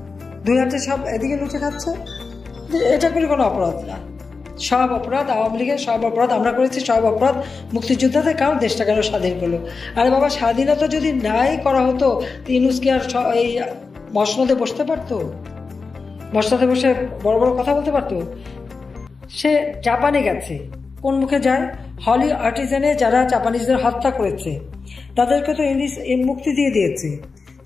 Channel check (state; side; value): quieter; right; 4.5 dB